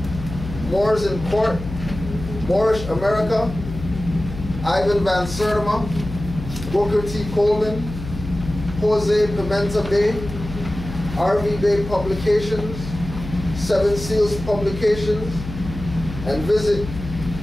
Moors in Court, Moorish America, Ivan Van Sertima, Booker T. Coleman, Jose Pimenta Bey, RV Bey Publications, Seven Seals Publications, and visit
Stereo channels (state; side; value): noise; left; hum, 10 dB below the sound